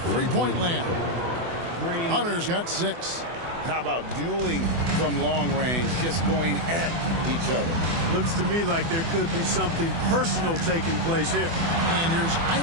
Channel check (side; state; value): left; late; 24 ms